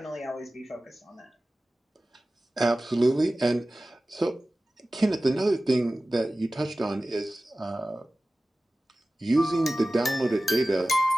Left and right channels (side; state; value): both; normal; correlation 0.96